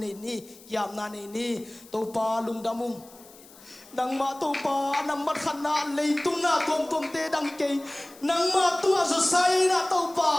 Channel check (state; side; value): noise; left; hiss, 23 dB below the sound